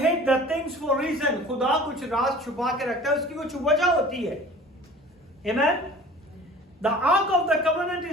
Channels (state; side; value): normal; both; correlation 0.44